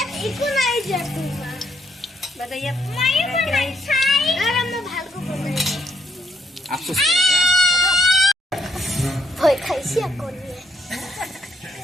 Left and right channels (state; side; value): normal; both; correlation 0.73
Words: আফসোস করে ভয় খাইছি এখন